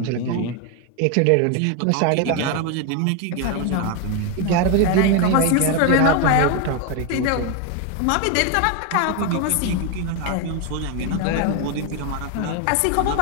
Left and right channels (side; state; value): both; different; correlation 0.01